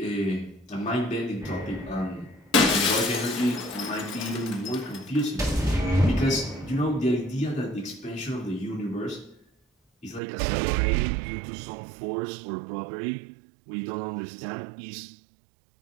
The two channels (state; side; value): drops out; left; at 10.2 s